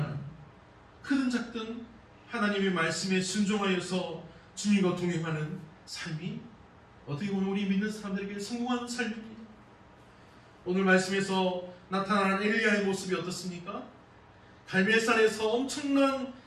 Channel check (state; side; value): identical; both; correlation 1.00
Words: 크든 작든 하나님의 말씀에 순종하여서 주님과 동행하는 삶이 어떻게 보면 우리 믿는 사람들에게 성공하는 삶입니다. 오늘 말씀에서 나타난 엘리야의 모습이 어떻습니까? 갈멜산에서 엄청난